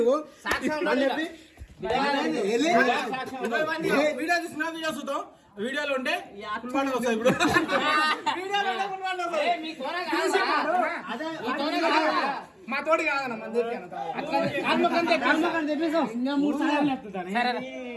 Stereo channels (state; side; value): identical; both; correlation 1.00